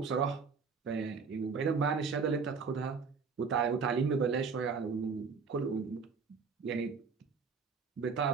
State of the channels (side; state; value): left; quieter; 5.3 dB